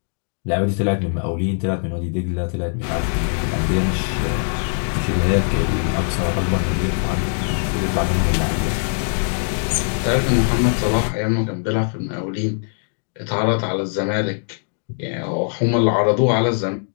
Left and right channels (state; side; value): silent; right; digital silence